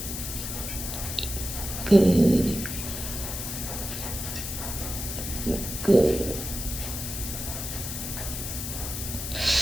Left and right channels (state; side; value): noise; left; hiss, 5 dB below the sound